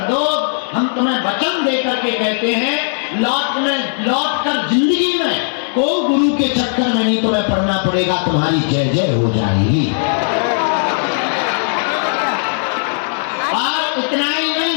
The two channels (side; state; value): right; silent; 68 dB below the other